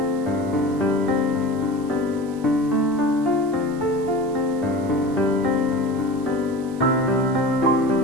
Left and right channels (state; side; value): noise; right; hiss, 24 dB below the sound